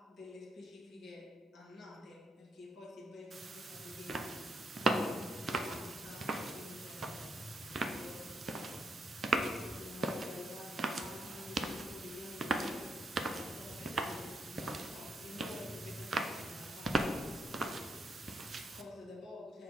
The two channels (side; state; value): both; normal; correlation 0.78